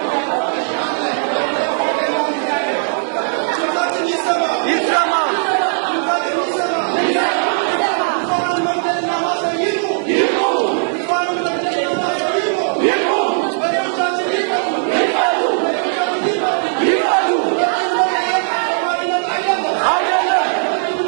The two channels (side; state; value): left; silent; digital silence